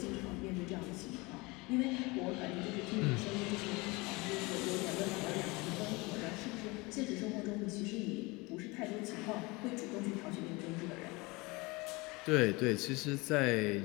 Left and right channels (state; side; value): quieter; right; 24.7 dB